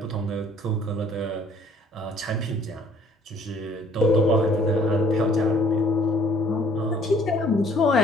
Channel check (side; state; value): both; normal; correlation 0.59